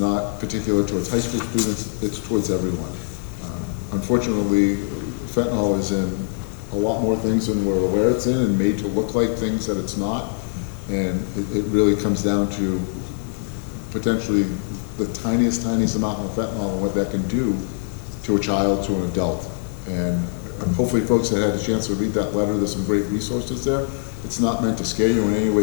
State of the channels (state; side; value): silent; right; digital silence